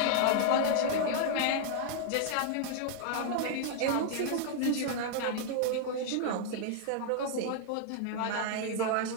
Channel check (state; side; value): different; both; correlation 0.00